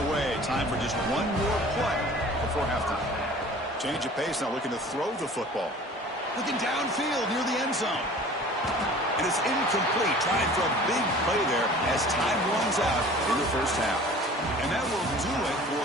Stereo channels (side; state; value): both; normal; correlation 0.45